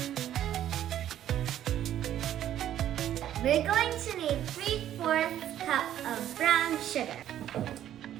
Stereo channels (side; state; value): left; quieter; 11.5 dB